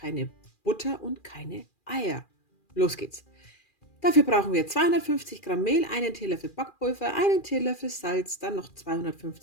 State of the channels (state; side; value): late; right; 2.4 ms